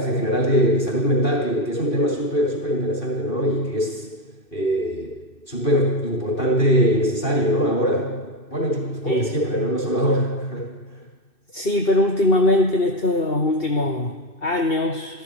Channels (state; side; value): late; right; 2.6 ms